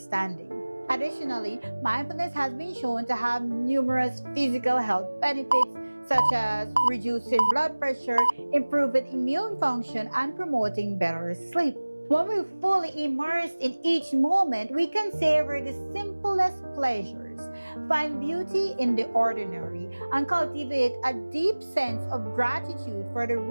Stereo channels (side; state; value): both; inverted; correlation -1.00